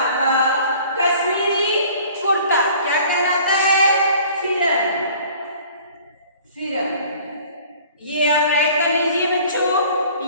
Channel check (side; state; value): both; inverted; correlation -0.50